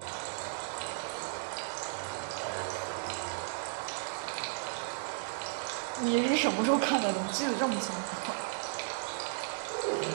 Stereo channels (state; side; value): silent; left; digital silence